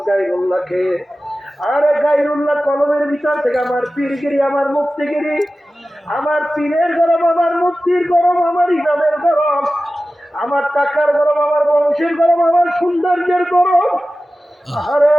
গায়রুল্লাহকে। আরে গায়রুল্লাহ কলমের ভিতর থেকে আমার পীরগিরি, আমার মুফতিগিরি, আমার পীরের গরম, আমার মুফতির গরম, আমার ইমামের গরম, আমার টাকার গরম, আমার বংশের গরম, আমার সৌন্দর্যের গরম, আরে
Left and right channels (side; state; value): both; normal; correlation 0.95